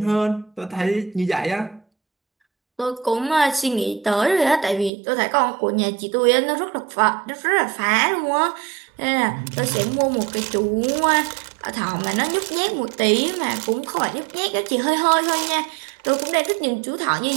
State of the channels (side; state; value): left; drops out; at 4.9 s